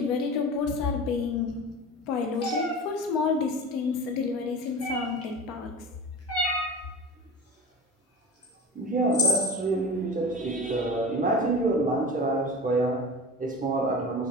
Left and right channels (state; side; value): normal; both; correlation 0.32